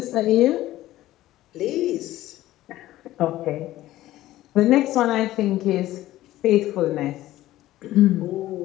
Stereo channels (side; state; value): right; quieter; 15.3 dB